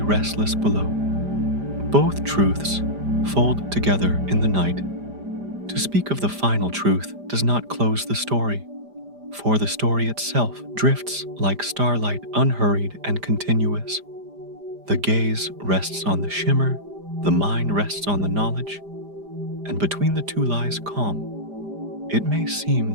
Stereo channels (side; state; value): left; late; 5.0 ms